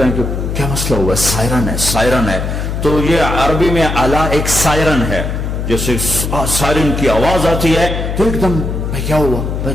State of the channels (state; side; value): noise; left; hum, 3 dB below the sound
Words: ہیں کہ کیا مسئلہ ہوا ہے، سائرن ہے سائرن ہے۔ تو یہ عربی میں الا ایک سائرن ہے، جیسے سائرن کی آواز آتی ہے تو ایک دم کیا ہوا